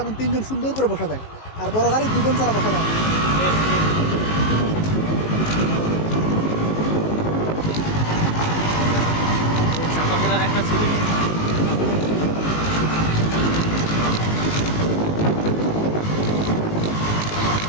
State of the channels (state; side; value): late; right; 19 ms